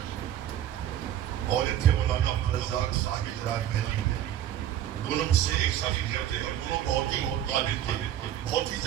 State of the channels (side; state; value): left; quieter; 11.2 dB